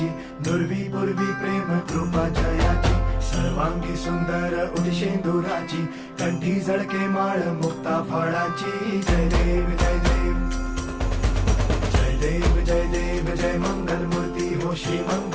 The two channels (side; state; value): both; identical; correlation 1.00